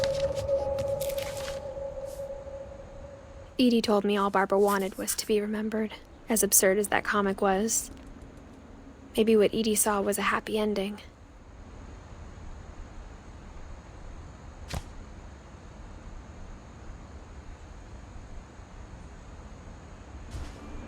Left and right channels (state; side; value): identical; both; correlation 1.00